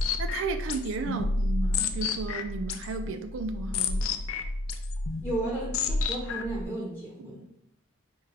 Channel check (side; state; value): both; normal; correlation 0.55